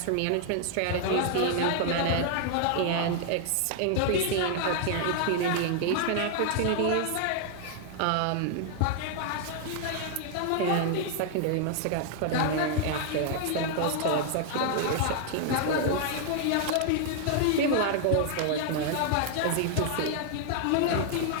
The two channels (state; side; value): different; both; correlation 0.00